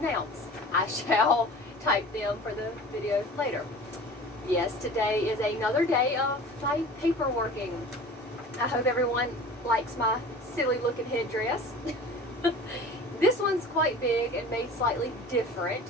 I shall type them for the video later. Yes, today is another day of my paperworking. I hope everyone likes my silly looking headdress. This one's quite big and made slightly different,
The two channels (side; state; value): both; normal; correlation 0.40